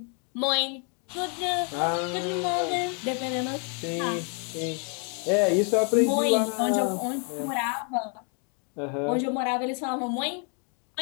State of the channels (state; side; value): quieter; right; 39.0 dB